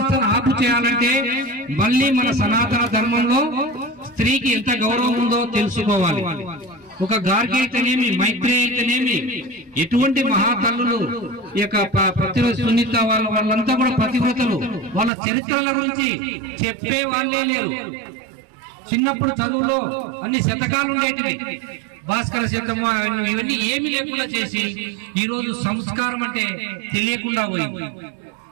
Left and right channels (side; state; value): left; drops out; at 15.1 s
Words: ఆపు చేయాలంటే మళ్ళీ మన సనాతన ధర్మంలో స్త్రీకి ఎంత గౌరవం ఉందో తెలుసుకోవాలి. ఒక గార్గి అయితేనేమి, మైత్రి అయితేనేమి, ఎటువంటి మహాతల్లులు ఈ యొక్క ప్రతిరోజు సునీత వాళ్ళంతా కూడా పతివ్రతలు. వాళ్ళ చరిత్రల గురించి చెప్పే వాళ్ళే లేరు. చిన్నప్పుడు చదువులో అన్ని శతకాలు ఉండేటివి, భాస్కర శతము ఇవన్నీ ఏమి లేకుండా చేసి ఈరోజు సంస్కారం అంటే తెలియకుండా పోయింది.